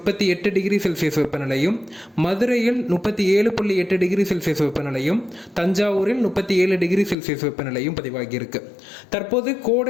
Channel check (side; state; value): right; drops out; at 7.2 s